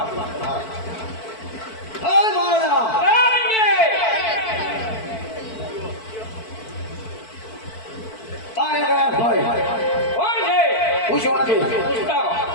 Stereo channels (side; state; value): right; late; 4.5 ms